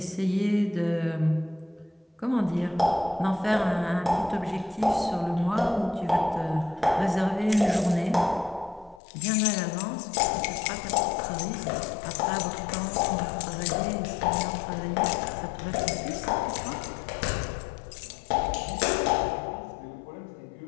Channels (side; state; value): right; drops out; at 9.0 s